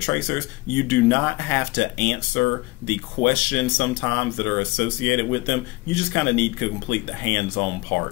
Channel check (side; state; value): right; quieter; 22.3 dB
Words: Tracers, you do not have to answer the questions sometimes that are associated with them. You just kind of need to complete the hands-on